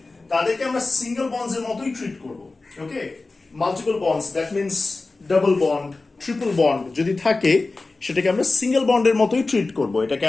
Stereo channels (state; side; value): quieter; right; 3.5 dB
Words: তাদেরকে আমরা সিঙ্গেল বন্ডস এর মতোই ট্রিট করব। Okay, multiple bonds that means double bond, triple bond যদি থাকে সেটাকে আমরা সিঙ্গেল বন্ডের মতোই ট্রিট করব। এটাকে